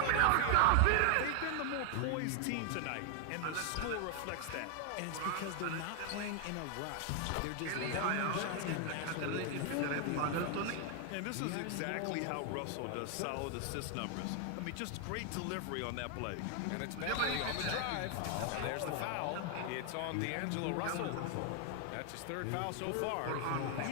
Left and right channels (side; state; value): both; different; correlation 0.00